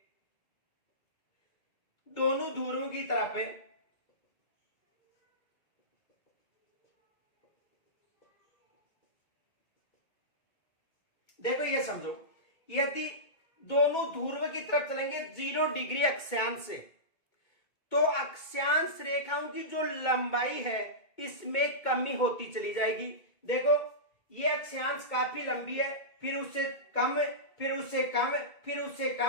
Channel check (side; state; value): right; late; 2.2 ms